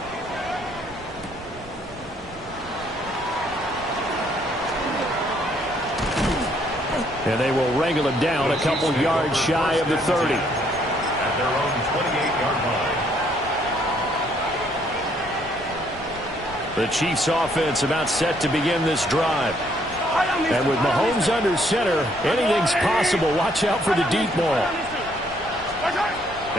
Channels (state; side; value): noise; right; rumble, 19 dB below the sound